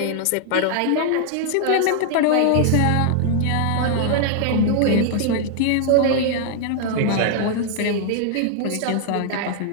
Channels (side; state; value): both; different; correlation 0.00